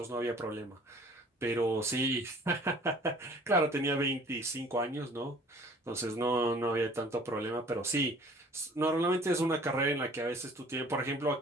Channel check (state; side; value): normal; both; correlation 0.51